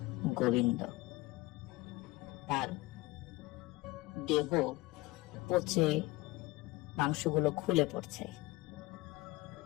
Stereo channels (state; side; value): quieter; right; 20.6 dB